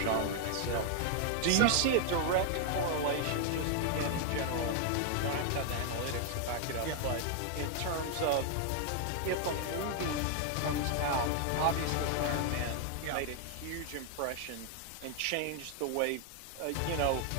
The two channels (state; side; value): different; both; correlation 0.00